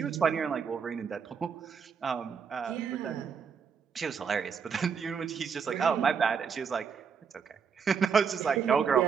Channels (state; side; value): quieter; left; 6.4 dB